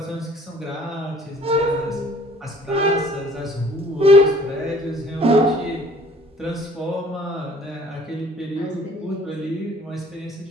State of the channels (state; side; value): normal; both; correlation 0.54